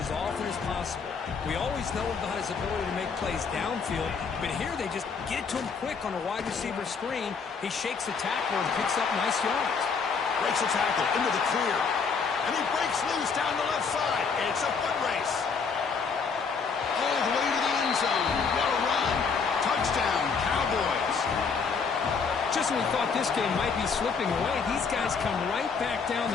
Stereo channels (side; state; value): right; quieter; 5.4 dB